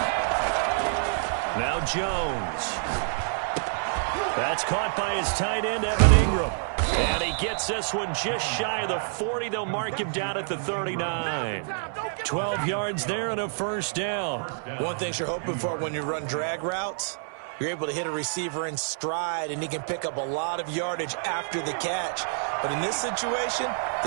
Jones. That's caught by his tight end, Evan Ingram. And he gets this one just shy of the 40. They'll mark him down at the 39. 12 yards there and a first down. One thing you're hoping for when you run drag routes, you're able to hit a receiver in stride, and he can pick up a lot of yardage after the catch. But in this situation,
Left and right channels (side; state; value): left; silent; 59 dB below the other